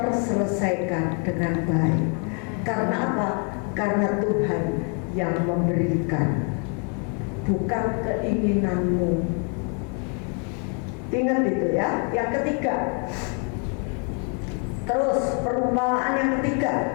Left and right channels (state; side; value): quieter; right; 39.2 dB